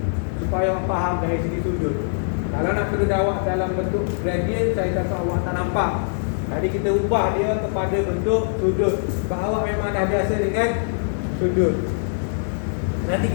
supaya awak faham dari segi sudut. Kalau nak perlu awak dalam bentuk gradient, saya takut awak tak nampak. Tadi kita ubah dia kepada bentuk sudut. Sebab awak memang dah biasa dengan sudut. Nanti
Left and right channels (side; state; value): right; silent; digital silence